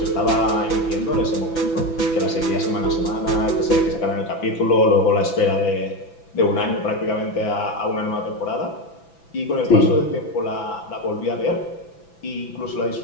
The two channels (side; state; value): right; late; 6.0 ms